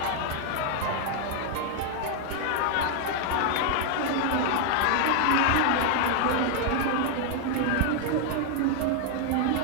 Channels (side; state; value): both; different; correlation 0.00